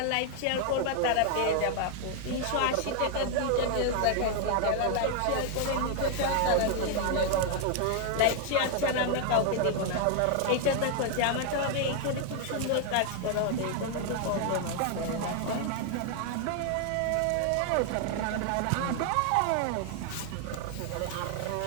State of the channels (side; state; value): both; different; correlation 0.00